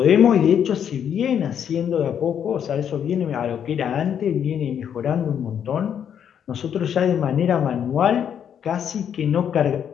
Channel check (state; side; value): quieter; right; 8.6 dB